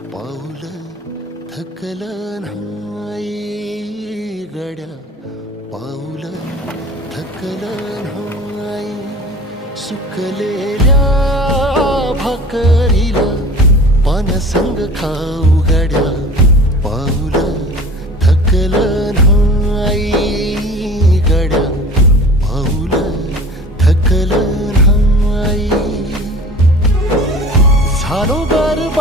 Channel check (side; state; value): both; normal; correlation 0.41